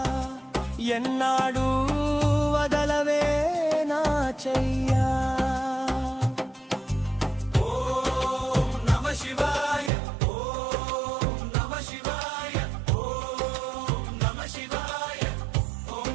ఎన్నాడు వదలవే నా చెయ్యా. ఓం నమ శివాయ, ఓం నమ శివాయ, ఓం నమ శివాయ, ఓం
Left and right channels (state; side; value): drops out; left; at 9.9 s